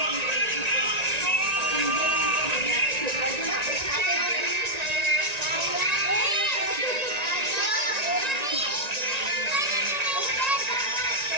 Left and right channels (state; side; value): late; left; 1.9 ms